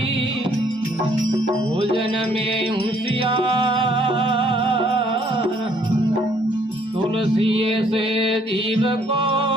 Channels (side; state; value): both; normal; correlation 0.64